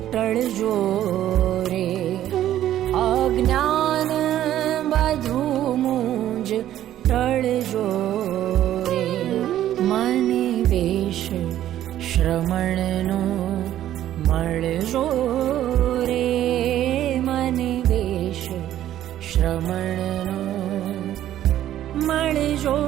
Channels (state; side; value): quieter; left; 12.3 dB